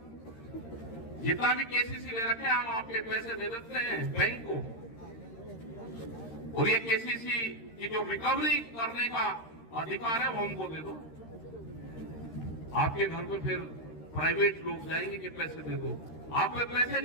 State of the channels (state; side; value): late; right; 13 ms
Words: जितना भी केसीसी ले रखे हम आपके पैसे दे देते हैं बैंक को, और ये केसीसी की जो रिकवरी करने का अधिकार है वो हमको दे दो। आपके घर पे फिर प्राइवेट लोग जाएंगे कि पैसे दे दो। आप पे पैसे